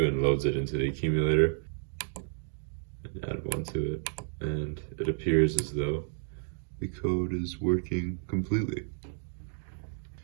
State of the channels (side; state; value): left; silent; digital silence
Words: and loads it into the accumulator. And add 1 to it, and it appears as though the code is working completely.